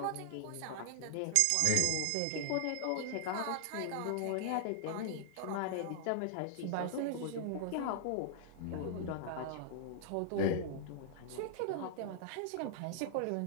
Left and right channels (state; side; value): different; both; correlation -0.01